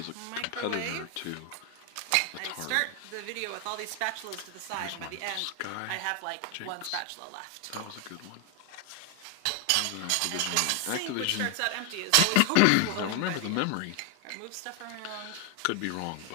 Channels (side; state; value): both; different; correlation 0.00